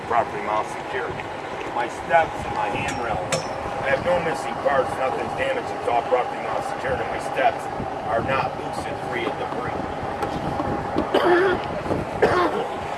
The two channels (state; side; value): identical; both; correlation 1.00